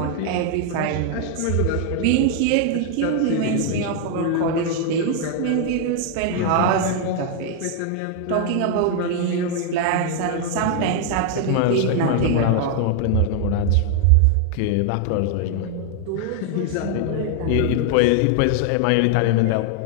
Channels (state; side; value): different; both; correlation 0.00